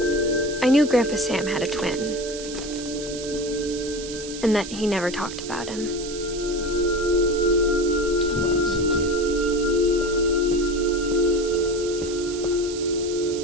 I knew Grandpa Sam had a twin, and that he never talked about him. Command center.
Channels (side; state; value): right; noise; hiss, 11 dB below the sound